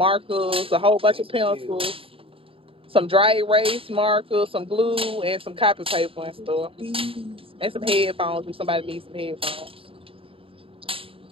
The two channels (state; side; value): late; left; 0.27 ms